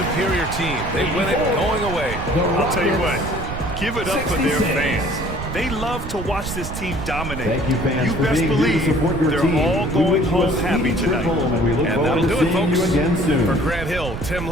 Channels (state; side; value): noise; right; rumble, 7 dB below the sound